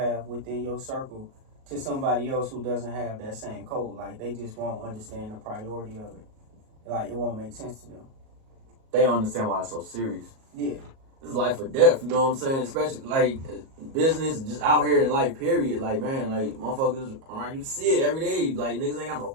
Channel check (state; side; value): late; left; 37 ms